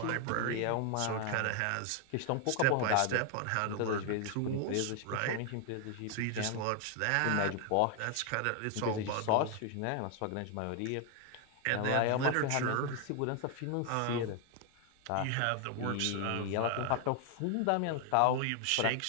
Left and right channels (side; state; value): both; different; correlation 0.00